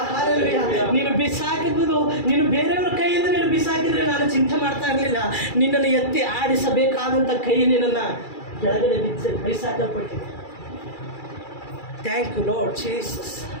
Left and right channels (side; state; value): right; late; 2.3 ms